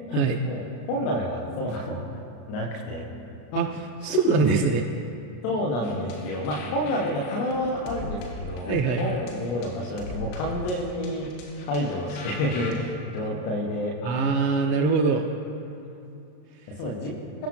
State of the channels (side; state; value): right; late; 33 ms